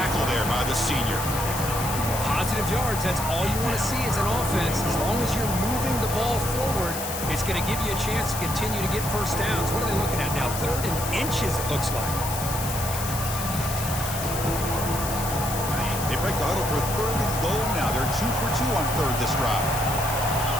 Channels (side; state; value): left; noise; hiss, 6 dB below the sound